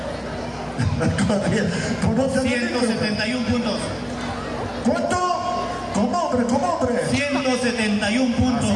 Pues no te dediques. 171 puntos. ¿Cuánto? Como hombre, como hombre. 171 puntos.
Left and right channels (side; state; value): both; identical; correlation 1.00